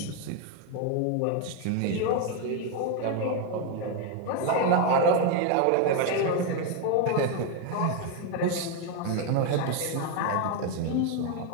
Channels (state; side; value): different; both; correlation 0.01